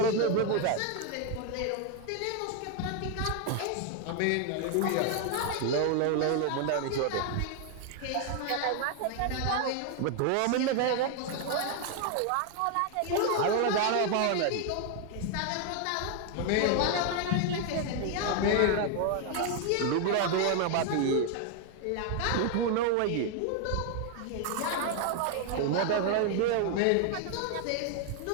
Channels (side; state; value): both; different; correlation 0.00